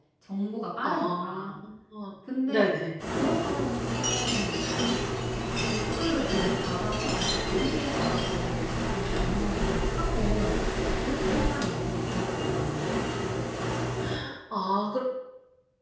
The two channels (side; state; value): both; identical; correlation 1.00